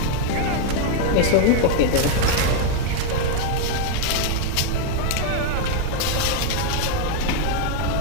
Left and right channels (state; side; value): different; both; correlation 0.01